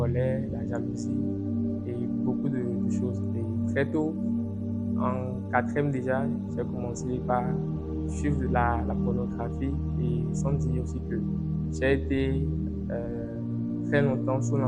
la jalousie et beaucoup de choses. Et très tôt, en quatrième déjà, j'ai commencé par suivre la pornographie et sans dire aussi que j'ai été très longtemps sous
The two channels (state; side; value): identical; both; correlation 1.00